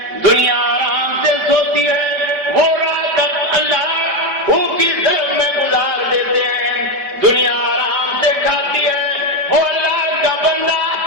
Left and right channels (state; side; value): late; left; 5.1 ms